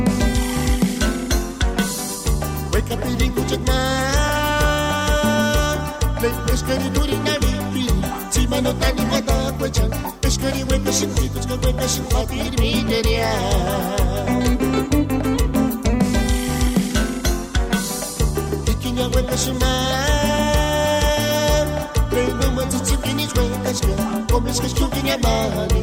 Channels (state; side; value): identical; both; correlation 1.00